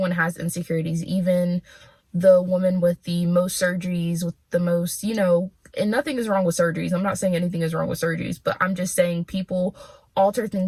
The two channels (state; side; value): identical; both; correlation 1.00